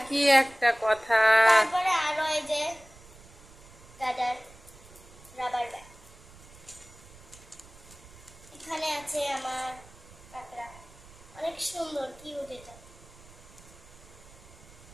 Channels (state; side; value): noise; right; rumble, 21 dB below the sound